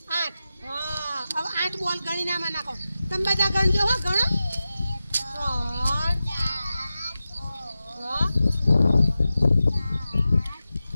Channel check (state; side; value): inverted; both; correlation -0.93